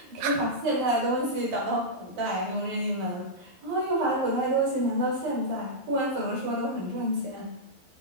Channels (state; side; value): late; left; 11 ms